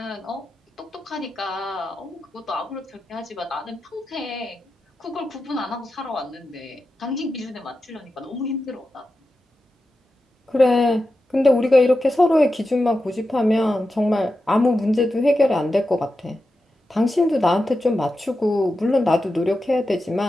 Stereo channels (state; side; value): normal; both; correlation 0.91